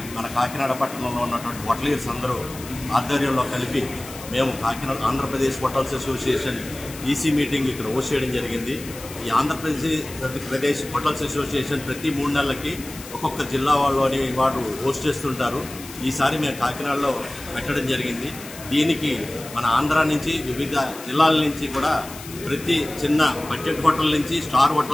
మన కాకినాడ పట్టణంలో ఉన్నటువంటి హోటలీర్స్ అందరూ ఆధ్వర్యంలో కలిపి మేము Kakinada Andhra Pradesh hotels association EC meeting ఇక్కడ హోస్ట్ చేయడం జరిగింది. ఈ ఆంధ్రప్రదేశ్ హోటల్స్ అసోసియేషన్ ప్రతి 3 నెలలకి ఒక్కొక్క జిల్లా వాళ్ళని వారు హోస్ట్ చేస్తుంటారు. ఈసారి మేము కాకినాడలో పెట్టడం జరిగింది. దీనికి మన ఆంధ్ర నుంచి వివిధ జిల్లాల నుంచి కూడా ప్రతి చిన్న బడ్జెట్ హోటల్ నుంచి స్టార్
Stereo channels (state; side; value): noise; left; hiss, 15 dB below the sound